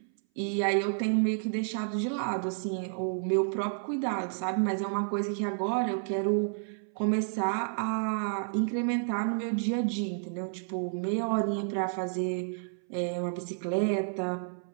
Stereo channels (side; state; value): left; silent; 57 dB below the other